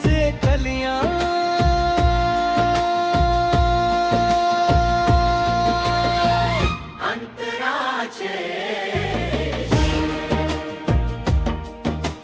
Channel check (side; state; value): both; identical; correlation 1.00